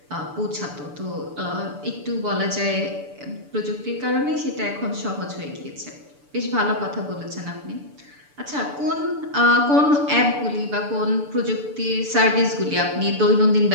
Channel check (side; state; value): left; late; 6.9 ms